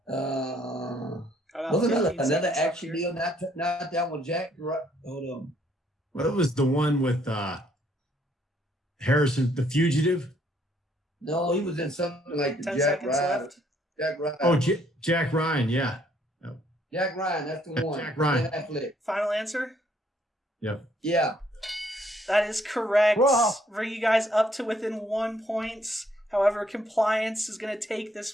About Wasn't 15 another seconds action left here. deal? Not that one, Jack. Right? Hold on. What was the one with Harrison, The Fugitive? No, he was in something like the 10 Jack seconds Ryan. left. Jack Ryan. Oh, Jack Ryan, yeah. Jack Ryan, that's the one. Jack Ryan. Ben Affleck. Final answer? Yep. Yeah. That is correct. Whoa. Bring you guys up to within 1 point. However, compliance is going to take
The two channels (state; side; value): normal; both; correlation 0.67